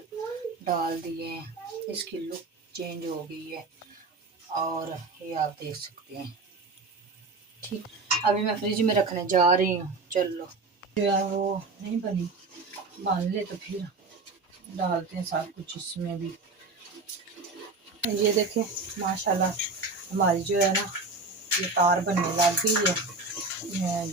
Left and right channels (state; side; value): quieter; left; 3.8 dB